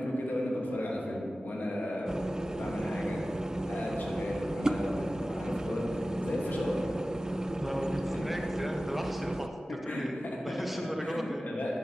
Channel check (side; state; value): both; normal; correlation 0.95